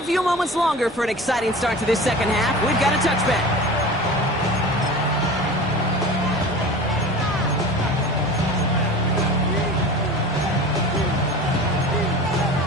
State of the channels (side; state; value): both; normal; correlation 0.36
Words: few moments longer for an exciting start to this second half. We've got a touchback.